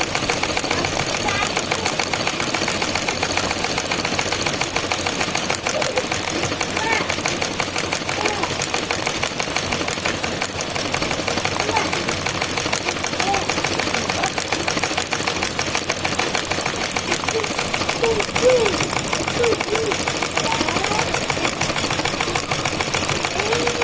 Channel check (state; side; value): identical; both; correlation 1.00